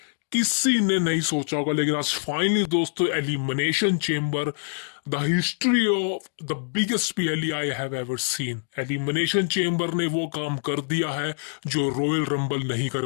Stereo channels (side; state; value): right; silent; digital silence